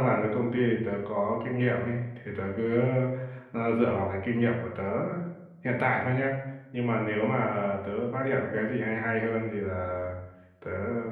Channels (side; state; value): both; identical; correlation 1.00